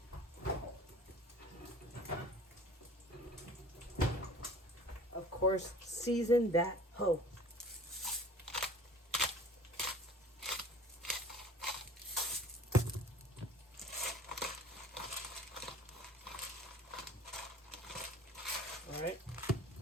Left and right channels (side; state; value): both; normal; correlation 0.46